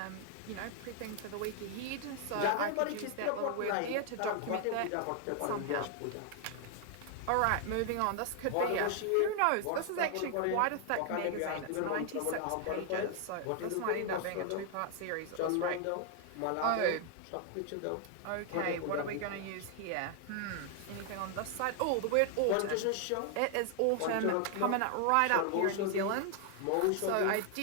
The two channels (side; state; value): both; different; correlation 0.00